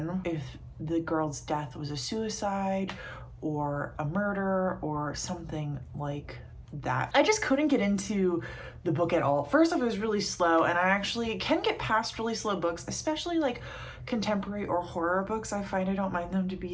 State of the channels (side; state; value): both; identical; correlation 1.00